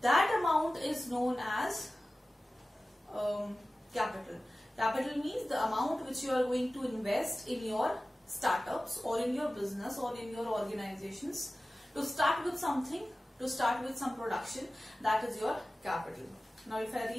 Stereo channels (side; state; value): both; normal; correlation 0.96